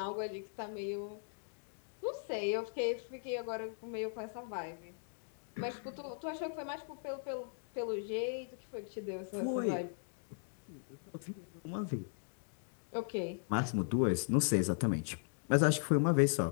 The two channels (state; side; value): silent; right; digital silence